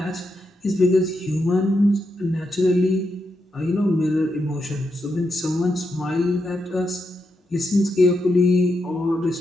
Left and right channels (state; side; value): normal; both; correlation 0.83